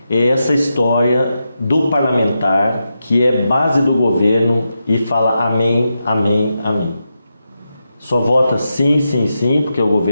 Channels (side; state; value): both; inverted; correlation -0.87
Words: é essa história do parlamentar que é base do governo e fala amém, amém, amém. Só vota sim, sim, sim, porque o